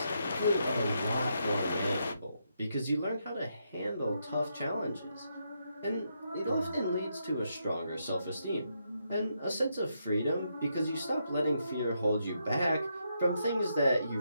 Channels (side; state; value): both; inverted; correlation -0.80